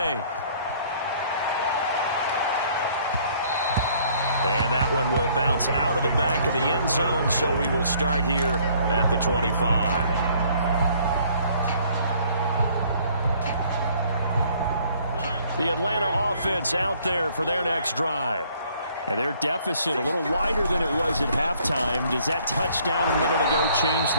And that one will bounce out of the back of the end zone, so we will start here at the 25. The Atlanta offense out there for their next drive. And their deficit a little wider than it was at halftime. Does that touchdown a minute ago change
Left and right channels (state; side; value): inverted; both; correlation -0.60